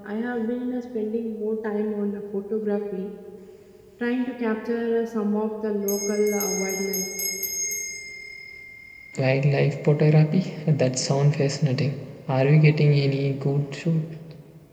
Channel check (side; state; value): both; identical; correlation 1.00